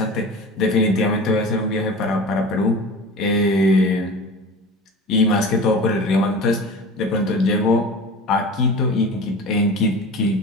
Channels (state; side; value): normal; both; correlation 0.35